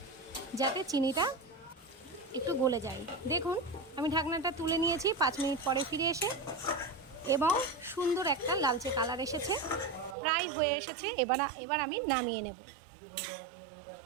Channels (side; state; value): left; drops out; at 10.2 s